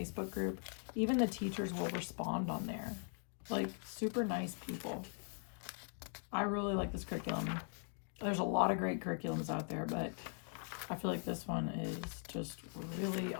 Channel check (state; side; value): silent; right; 50 dB below the other